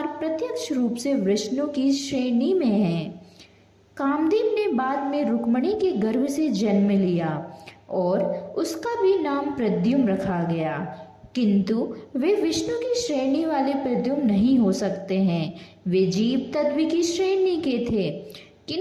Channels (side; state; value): both; identical; correlation 1.00